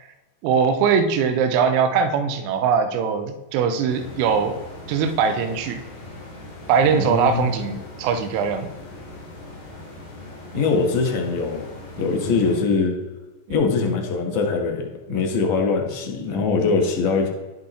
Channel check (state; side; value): late; left; 25 ms